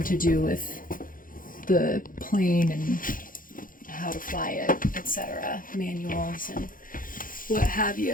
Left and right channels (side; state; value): right; late; 0.40 ms